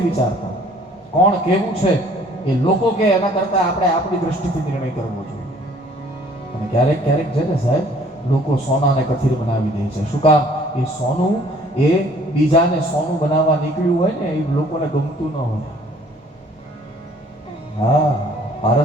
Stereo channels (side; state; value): both; normal; correlation 0.57